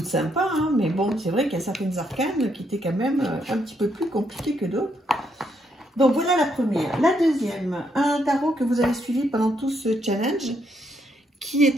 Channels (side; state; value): both; normal; correlation 0.75